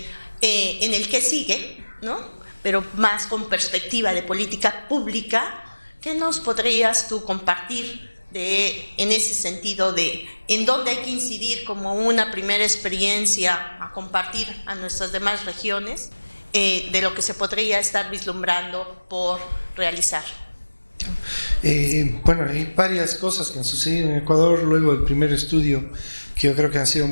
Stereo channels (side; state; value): both; inverted; correlation -1.00